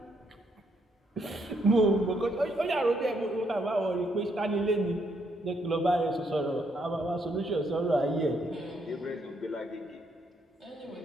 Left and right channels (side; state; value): both; normal; correlation 0.74